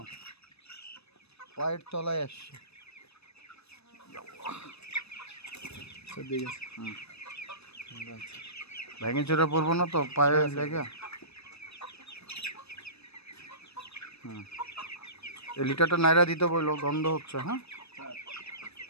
পায়ের তলায় আসছে। স্যার দেখেন। হুম, ভেঙে চড়ে পড়বো না তো পায়ে লেগে? হুম, এই লিটারটা নাইরা দিতে বললো, গন্ধ হচ্ছে। হ্যাঁ,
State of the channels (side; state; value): right; late; 0.79 ms